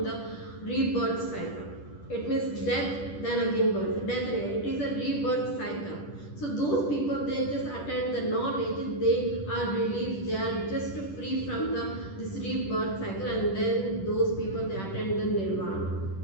the rebirth cycle. It means death, then again birth, death again. It is a rebirth cycle. So those people, they just attend the knowledge, they are relieved, they are just free from the this rebirth cycle, and then those people they attend the nirvana.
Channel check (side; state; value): right; late; 10 ms